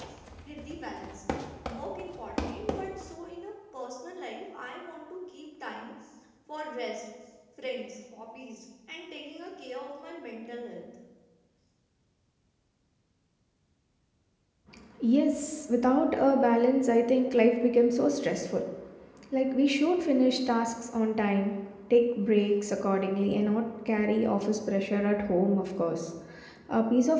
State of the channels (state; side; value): identical; both; correlation 1.00